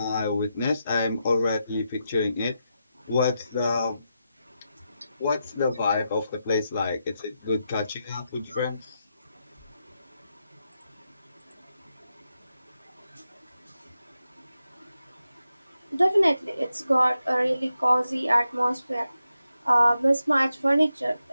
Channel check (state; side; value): inverted; both; correlation -0.87